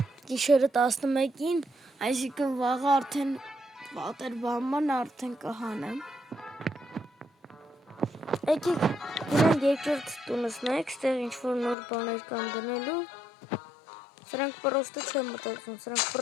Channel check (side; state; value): right; drops out; at 11.8 s